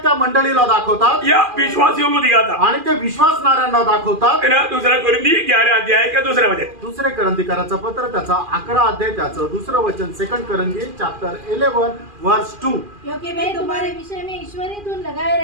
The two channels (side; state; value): left; late; 2.4 ms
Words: त्या मंडळीला दाखवतात, या विश्वासियों को दिखाता, आणि ते विश्वासणाऱ्यांना दाखवतात। है ना। दूसरा कोरिंथी 11 अध्याय का दूसरा वचन, दुसरे करंथीकराचं पत्र त्याचा 11 अध्याय त्याचं दुसरं वचन, 2 करंथी चैप्टर 11 वर्स 2। क्योंकि मैं तुम्हारे विषय में ईश्वरी धुन लगाए